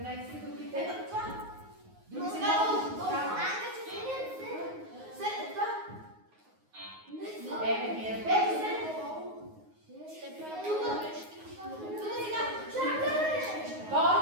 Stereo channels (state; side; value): late; left; 9.5 ms